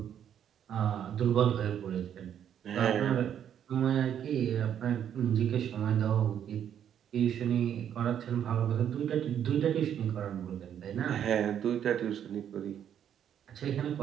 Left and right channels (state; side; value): quieter; left; 9.4 dB